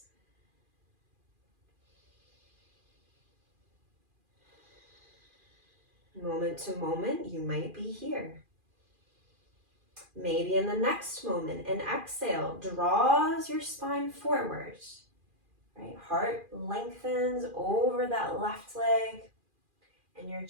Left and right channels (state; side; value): late; left; 2.4 ms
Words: Moment to moment, you might be here. Maybe in the next moment, an exhale draws your spine forward, right? Heart lengthens over that left leg, and your